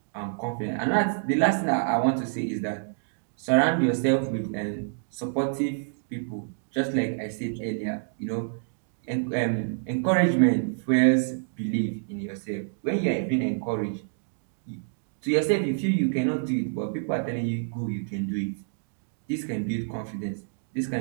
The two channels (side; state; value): left; silent; digital silence